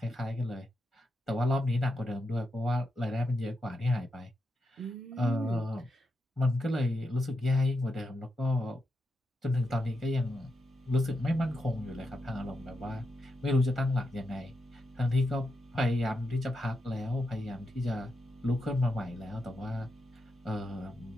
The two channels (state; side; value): normal; both; correlation 0.85